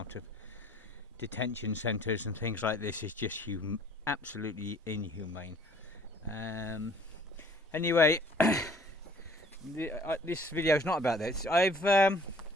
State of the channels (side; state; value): both; normal; correlation 0.55